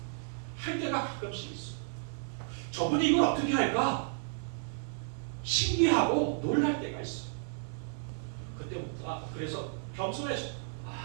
할 때가 가끔씩 있어. 저분이 이걸 어떻게 할까? 신기하고 놀랄 때가 있어. 그때 그래서 겸손해서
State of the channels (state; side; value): silent; left; 56 dB below the other